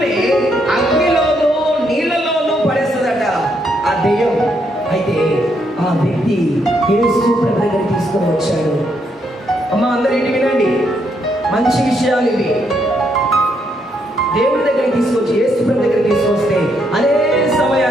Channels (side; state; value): both; normal; correlation 0.75